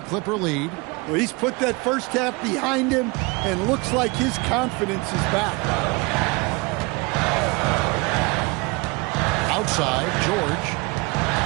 Clipper lead. Well, he's put that first half behind him and looks like his confidence is back. Outside, George.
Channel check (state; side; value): quieter; left; 27.0 dB